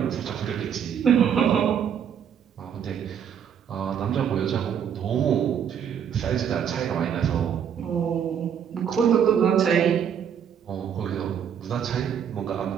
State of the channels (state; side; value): quieter; left; 8.3 dB